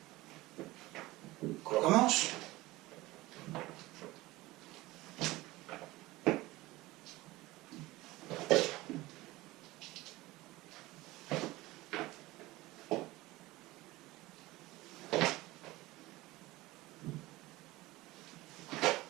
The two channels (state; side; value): quieter; left; 19.3 dB